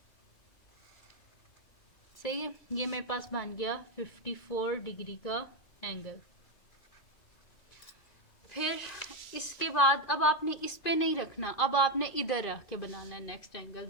सही है। ये मेरे पास बन गया 54 डिग्री का एंगल। फिर इसके बाद अब आपने इस पे नहीं रखना, अब आपने इधर रख के बनाना है नेक्स्ट एंगल।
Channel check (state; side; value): late; right; 2.5 ms